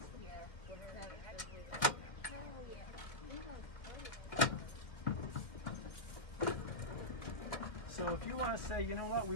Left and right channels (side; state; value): right; late; 2.1 ms